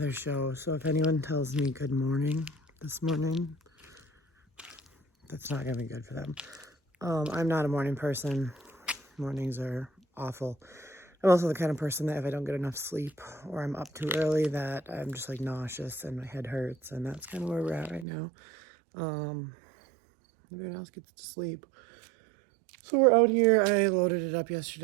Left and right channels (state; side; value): drops out; left; at 18.1 s